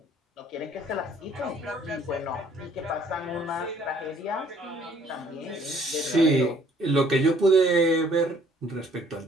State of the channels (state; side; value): normal; both; correlation 0.60